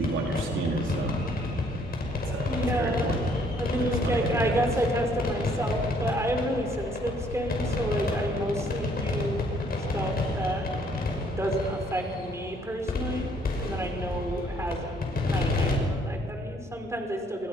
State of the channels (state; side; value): normal; both; correlation 0.64